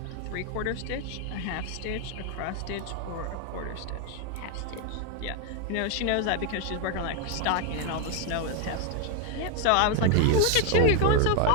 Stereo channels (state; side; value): different; both; correlation 0.01